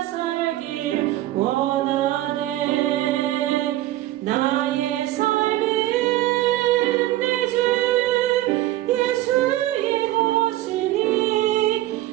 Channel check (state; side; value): quieter; left; 15.4 dB